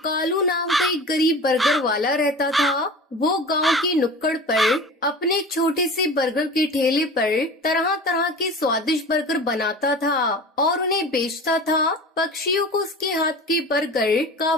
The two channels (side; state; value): both; normal; correlation 0.36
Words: कालू नाम का एक गरीब बर्गर वाला रहता था। वो गांव की नुक्कड़ पर अपने छोटे से बर्गर के ठेले पर तरह तरह के स्वादिष्ट बर्गर बनाता था और उन्हें बेचता था। पक्षियों को उसके हाथ के बर्गर